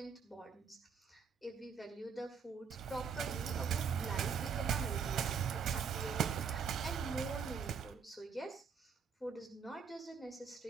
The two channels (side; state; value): left; quieter; 6.3 dB